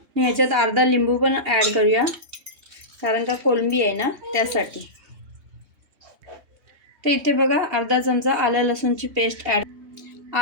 ह्याच्यात अर्धा लिंबू पण ॲड करूया, कारण का कोळंबी आहे ना त्यासाठी। तर इथे बघा अर्धा चमचा आलं लसूणची पेस्ट ॲड,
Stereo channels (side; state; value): left; late; 3.2 ms